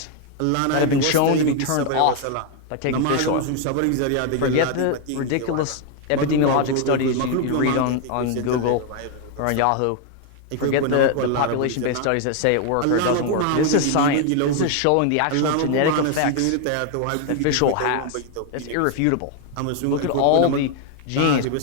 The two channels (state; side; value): different; both; correlation 0.01